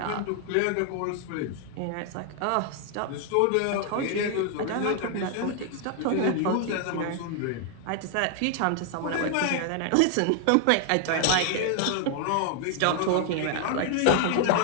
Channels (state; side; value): different; both; correlation 0.00